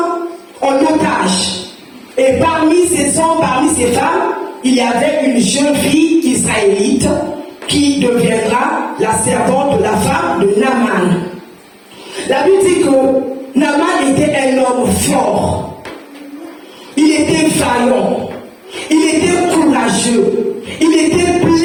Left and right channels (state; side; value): identical; both; correlation 1.00